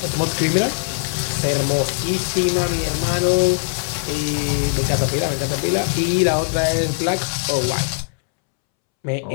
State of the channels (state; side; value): silent; right; 66 dB below the other